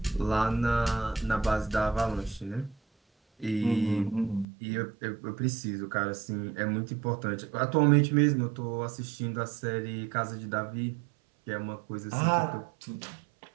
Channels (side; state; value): left; drops out; at 4.5 s